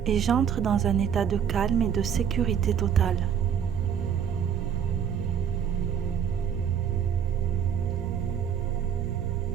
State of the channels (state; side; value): quieter; left; 8.2 dB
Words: et j'entre dans un état de calme et de sécurité totale.